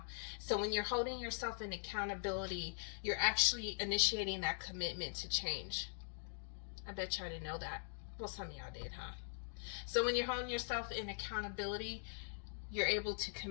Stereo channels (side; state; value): right; silent; digital silence